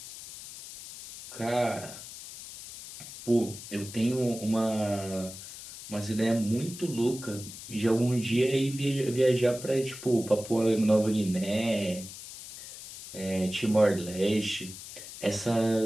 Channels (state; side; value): noise; left; hiss, 13 dB below the sound